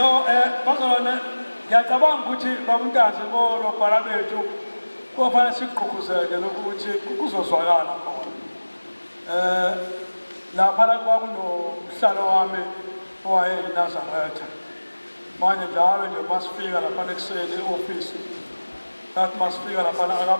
bazalwane ngiyacabanga ukuthi babuntazi bolobhala bethu kufanele siqhuqhuzeke lokuthi kuzozwakala khona. Lapha kwakunomhlalo wami owayeyiNazaretha. Manje njalo nje masifika lapha ekuseni e-office that masifika lapha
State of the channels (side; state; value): both; inverted; correlation -1.00